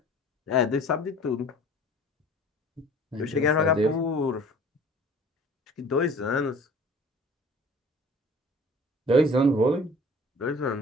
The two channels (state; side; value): normal; both; correlation 0.47